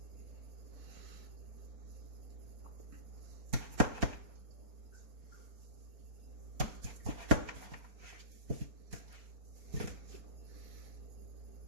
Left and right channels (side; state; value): left; late; 4.3 ms